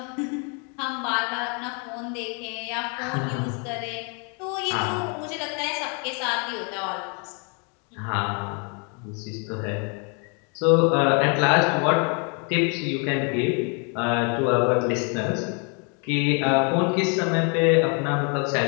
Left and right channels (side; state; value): right; quieter; 36.5 dB